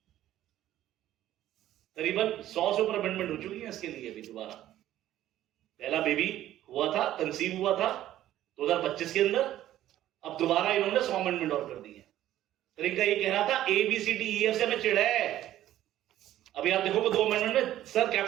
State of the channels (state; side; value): quieter; left; 13.2 dB